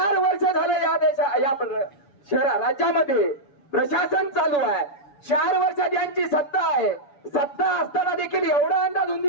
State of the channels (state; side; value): late; right; 7.1 ms